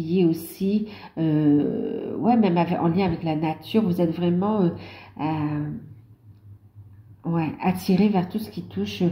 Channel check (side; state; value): both; identical; correlation 1.00